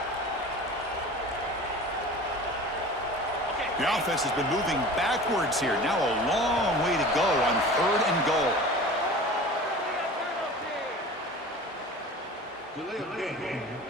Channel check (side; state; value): both; normal; correlation 0.39